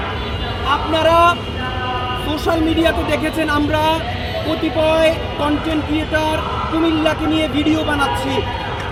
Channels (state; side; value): identical; both; correlation 1.00